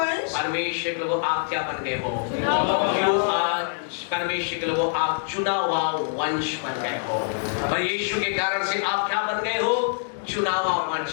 परमेश्वर के लोगों आप क्या बन गए हो? परमेश्वर के लोगों आप चुना हुआ वंश बन गए हो। और यीशु के कारण से आप क्या बन गए हो? चुना हुआ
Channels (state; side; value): silent; right; digital silence